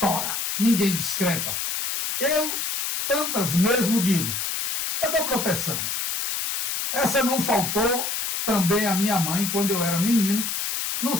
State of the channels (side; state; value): left; noise; hiss, 2 dB below the sound